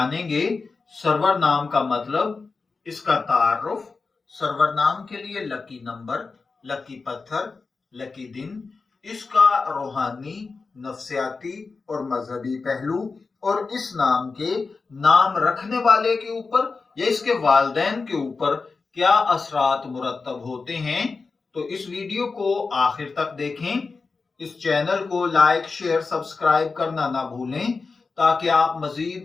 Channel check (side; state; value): right; quieter; 4.3 dB